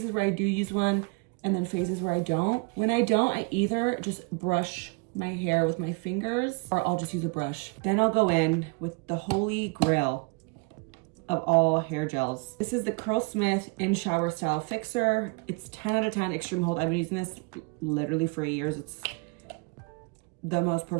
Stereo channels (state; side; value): quieter; left; 32.3 dB